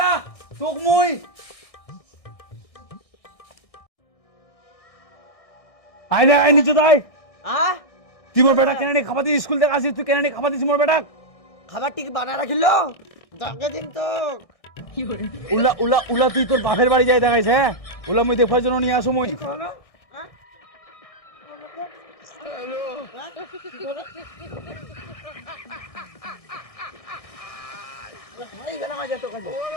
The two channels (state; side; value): late; right; 1.6 ms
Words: তোক মুই আয় না আয় নিচে তাই हां তুই মোর বেটা কেন নি খাবার দি স্কুল থেকে আসিস তুই কেন নি খাবার দিস মোর বেটা খাবার ঠিক বানা রাখিলো ডাকে দিন তো উলা উলা উলা তুই তোর বাপের বাড়ি যাই দেখাইছ হ্যাঁ উলা মুই দেখার জন্য নিয়ে আসো মুই ভাই গেলাম আজ তো কাজে